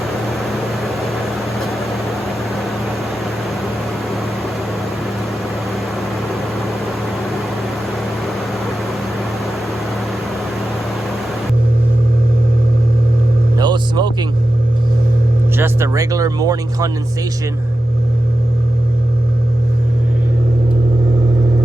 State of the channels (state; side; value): normal; both; correlation 0.91